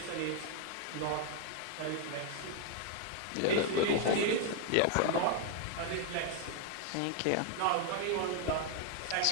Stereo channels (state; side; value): different; both; correlation 0.00